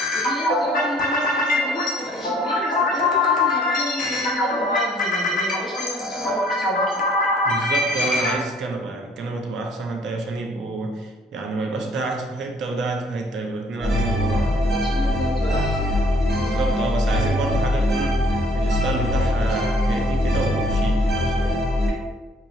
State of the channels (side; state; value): both; normal; correlation 0.59